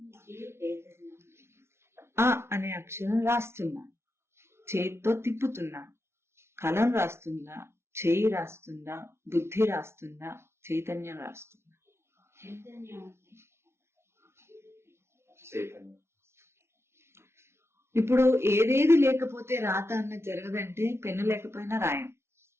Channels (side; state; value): left; late; 0.12 ms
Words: ఆ అనే అక్షరం రాస్తున్నా, చేతితో తిప్పుతున్నా. కలం రాస్తుందా? చేయి రాస్తుందా? బుద్ధి రాస్తుందా? చైతన్యం రాస్తుందా? చైతన్యం. ఇప్పుడు ఏదేది లేకపోతే రాత అన్న జరగదంటే పెన్ను లేకపోయినా రాయం,